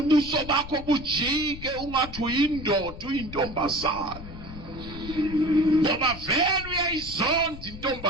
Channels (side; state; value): left; noise; rumble, 12 dB below the sound